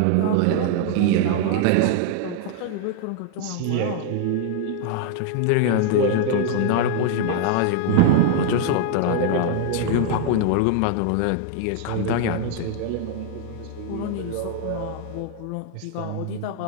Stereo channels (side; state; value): both; different; correlation 0.00